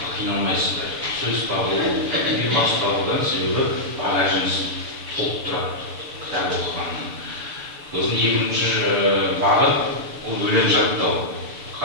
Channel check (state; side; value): late; left; 7.0 ms